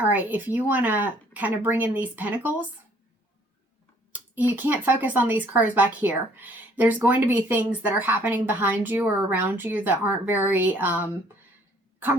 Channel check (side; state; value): both; normal; correlation 0.60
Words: right, if you want to kind of bring in these pentacles, you can't focus on these cards back here. There's going to be things that are happening behind you or around you that aren't very